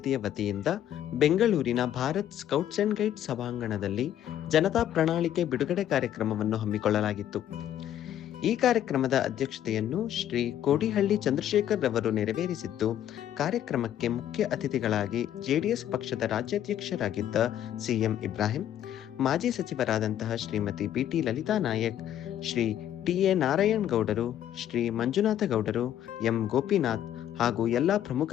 ವತಿಯಿಂದ ಬೆಂಗಳೂರಿನ ಭಾರತ್ ಸ್ಕೌಟ್ಸ್ ಅಂಡ್ ಗೈಡ್ಸ್ ಸಭಾಂಗಣದಲ್ಲಿ ಜನತಾ ಪ್ರಣಾಳಿಕೆ ಬಿಡುಗಡೆ ಕಾರ್ಯಕ್ರಮವನ್ನು ಹಮ್ಮಿಕೊಳ್ಳಲಾಗಿತ್ತು. ಈ ಕಾರ್ಯಕ್ರಮದ ಅಧ್ಯಕ್ಷತೆಯನ್ನು ಶ್ರೀ ಕೋಡಿಹಳ್ಳಿ ಚಂದ್ರಶೇಖರ್ ರವರು ನೆರವೇರಿಸಿದ್ದು, ಕಾರ್ಯಕ್ರಮಕ್ಕೆ ಮುಖ್ಯ ಅತಿಥಿಗಳಾಗಿ ಜೆಡಿಎಸ್ ಪಕ್ಷದ ರಾಜ್ಯಾಧ್ಯಕ್ಷರಾಗಿದ್ದ ಸಿಎಂ ಇಬ್ರಾಹಿಂ, ಮಾಜಿ ಸಚಿವರಾದಂತಹ ಶ್ರೀಮತಿ ಬಿಟಿ ಲಲಿತಾ ನಾಯಕ್, ಶ್ರೀ ಟಿ.ಎ. ನಾರಾಯಣ್ ಗೌಡರು, ಶ್ರೀ ಮಂಜುನಾಥ ಗೌಡರು, ಎಂ ಗೋಪಿನಾಥ್ ಹಾಗೂ ಎಲ್ಲ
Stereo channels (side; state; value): right; quieter; 11.2 dB